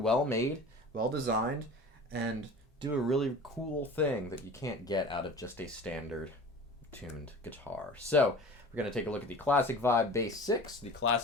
made, well designed, and do a really cool thing that you can't get out of just a standard tuned guitar. So we're going to take a look at the Classic Vibe Bass 6, the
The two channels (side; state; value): both; normal; correlation 0.39